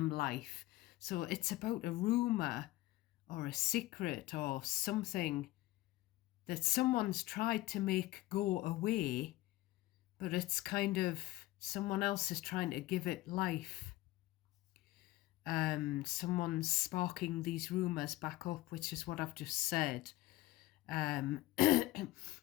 life. So it's about a rumour or a secret or something that someone's tried to make go away, but it's kind of, someone else is trying to give it life. Someone's sparking these rumours back up, which is what I've just said. And,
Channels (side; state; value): right; quieter; 17.7 dB